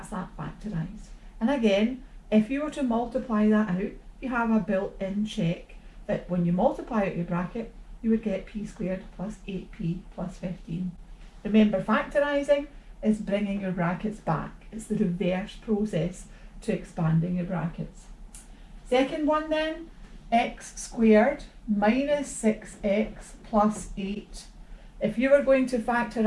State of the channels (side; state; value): both; identical; correlation 1.00